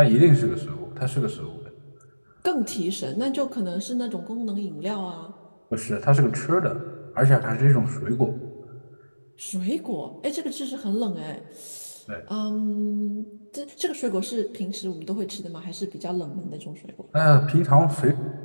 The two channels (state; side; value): inverted; both; correlation -1.00